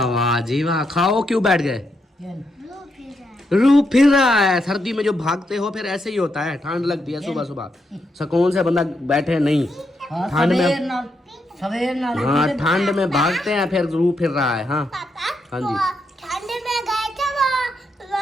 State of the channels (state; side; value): normal; both; correlation 0.81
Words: वाह जी वाह। खाओ, क्यों बैठ गए? रू फिर रहा है। सर्दी में जो भागते हो फिर ऐसे ही होता है, ठंड लगती है सुबह सुबह, सुकून से बंदा बैठे नहीं। ठंड में सवेर ना हाँ, ठंड में भागते हैं, फिर रू फिर रहा है। हाँ हाँ जी, ठंड में गए थे